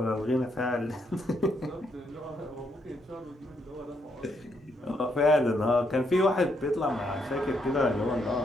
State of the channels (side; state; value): both; normal; correlation 0.75